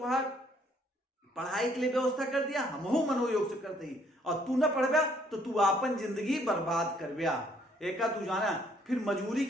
पढ़ाई के लिए व्यवस्था कर दिया, हम मनोयोग से करते ही। और तू ना पढ़बा तो तू अपन जिंदगी बर्बाद करबा। एका तू जाना फिर मजूरी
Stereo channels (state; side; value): normal; both; correlation 0.65